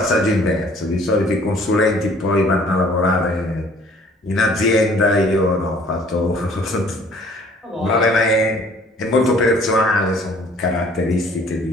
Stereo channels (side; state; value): both; normal; correlation 0.56